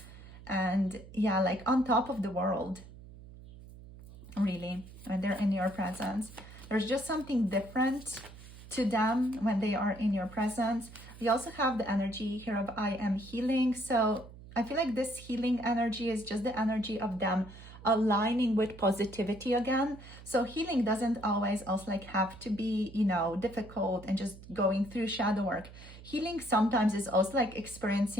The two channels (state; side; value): noise; right; hum, 17 dB below the sound